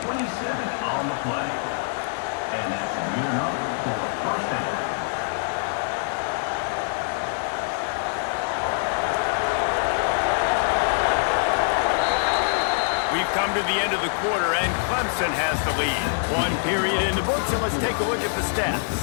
27 on the play. And that's good enough for a first down. We've come to the end of the quarter, and Clemson has the lead. One period in the books, and let's take a look at the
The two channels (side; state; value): right; silent; 58 dB below the other